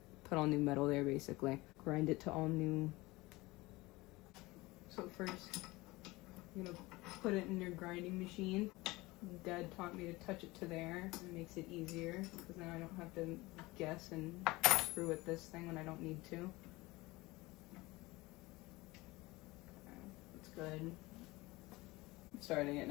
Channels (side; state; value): right; quieter; 21.4 dB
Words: put all new metal there, basically. Grind it to all new. So first, I'm going to put it in your grinding machine. Dad taught me to touch it to there. It makes it easier because then I don't have to guess and screw with this thing when I don't need to. Okay, that's good. I'm starting it